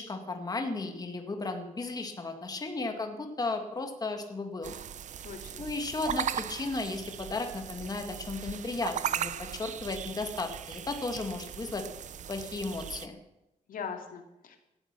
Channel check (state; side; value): normal; both; correlation 0.41